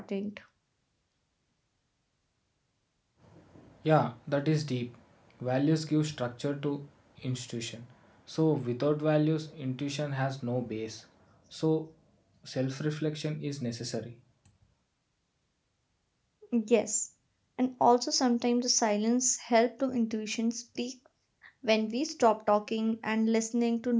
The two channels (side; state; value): both; identical; correlation 1.00